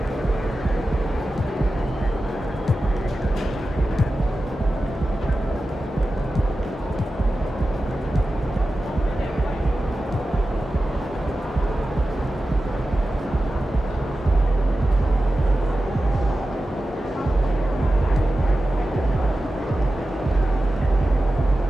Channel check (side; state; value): both; normal; correlation 0.93